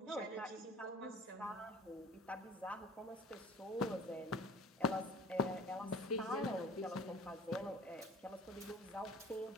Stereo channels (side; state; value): both; normal; correlation 0.43